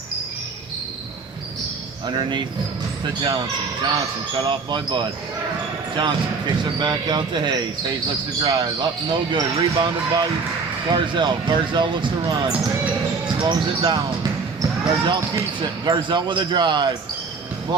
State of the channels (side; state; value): left; quieter; 4.6 dB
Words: Underneath to Johnson. Johnson cut off by Bud. Johnson kicks it back out to Hayes. Hayes looks to drive. Up, no good. Rebounded by Garzel. Garzel looks to run. Slows it down. Garzel keeps it. Garzel with a drive.